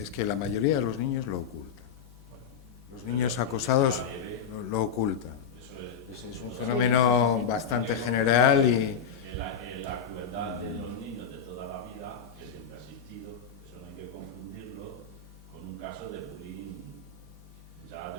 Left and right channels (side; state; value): right; quieter; 6.7 dB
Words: que la mayoría de los niños lo ocultan. Bueno, Los pero niños porque acosados sea leve, lo ocultan. eso es Es un totalmente- fenómeno bastante general y La crueldad de los niños de toda la vida, que siempre ha existido, eso no hay que confundirlo con un caso de bullying ya